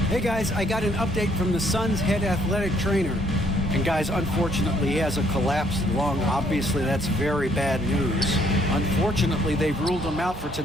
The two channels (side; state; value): right; noise; hum, 15 dB below the sound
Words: Hey guys, I got an update from the Suns head athletic trainer. And guys, unfortunately, he has a collapsed lung. Obviously, that's very bad news. Unfortunately, they've ruled him out for